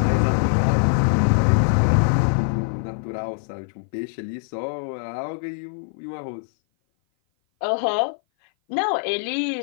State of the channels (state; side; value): silent; right; 57 dB below the other